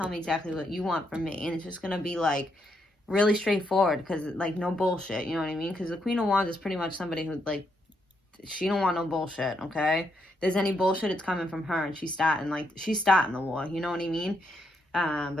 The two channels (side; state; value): both; normal; correlation 0.78